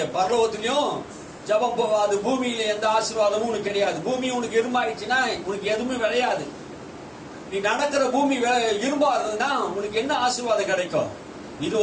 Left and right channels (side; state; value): both; identical; correlation 1.00